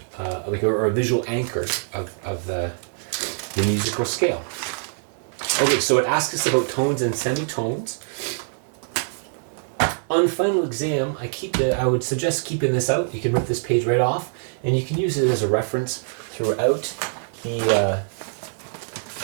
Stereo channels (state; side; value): silent; left; digital silence